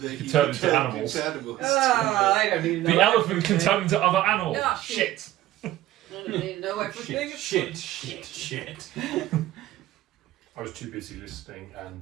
that You turn into animals. I don't even know. The elephant can turn into other animals. Ah, Shit. I don't even know everything. Shit. I was too busy listening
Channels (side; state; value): left; quieter; 14.5 dB